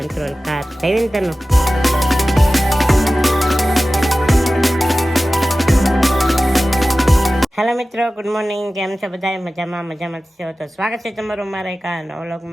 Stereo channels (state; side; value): normal; both; correlation 0.96